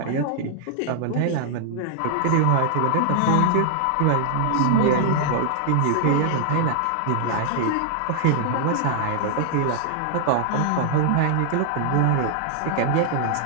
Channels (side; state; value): both; different; correlation -0.01